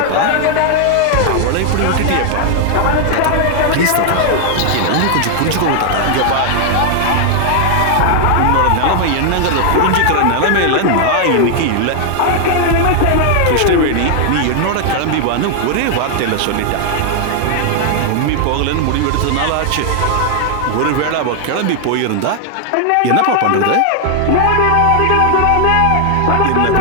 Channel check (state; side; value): different; both; correlation 0.00